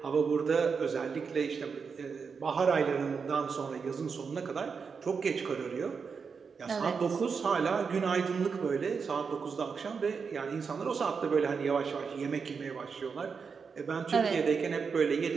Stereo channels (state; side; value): quieter; left; 5.6 dB